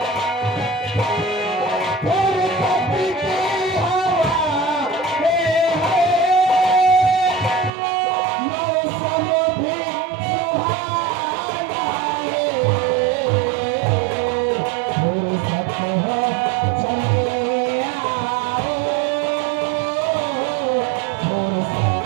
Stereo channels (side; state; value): left; drops out; at 7.7 s